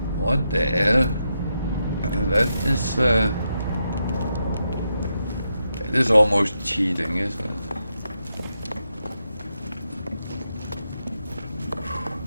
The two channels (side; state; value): both; inverted; correlation -0.84